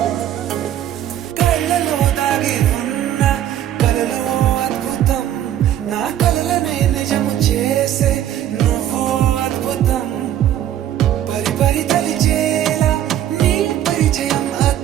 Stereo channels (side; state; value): left; quieter; 11.3 dB